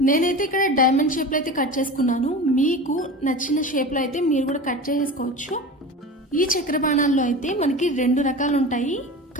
నేనైతే ఇక్కడ డైమండ్ షేప్లో అయితే కట్ చేసుకున్నాను. మీకు నచ్చిన షేప్లో అయితే మీరు కూడా కట్ చేసేసుకోవచ్చు. ఈ చక్కెర బాణాల్లో అయితే మనకి 2 రకాలు ఉంటాయి,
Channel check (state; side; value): normal; both; correlation 0.31